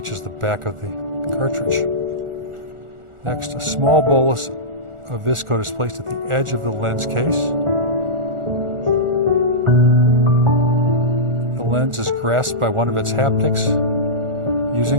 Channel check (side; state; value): left; late; 1.4 ms